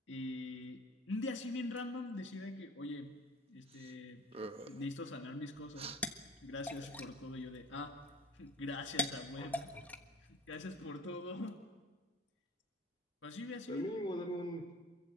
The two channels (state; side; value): normal; both; correlation 0.43